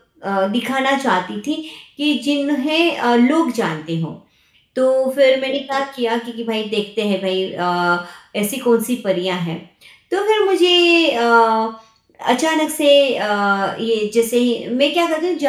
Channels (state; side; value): identical; both; correlation 1.00